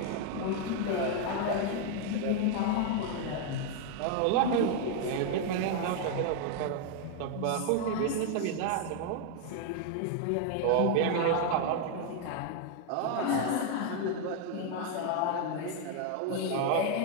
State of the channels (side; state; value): both; different; correlation 0.00